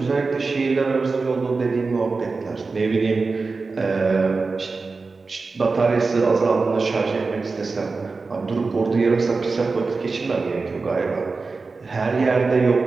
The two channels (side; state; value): left; quieter; 4.1 dB